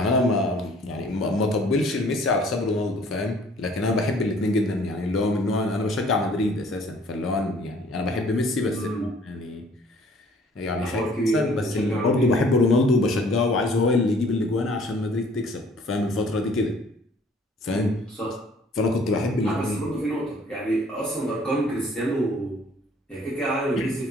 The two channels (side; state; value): both; normal; correlation 0.56